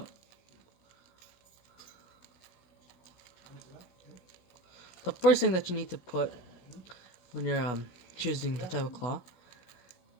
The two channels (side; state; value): right; late; 16 ms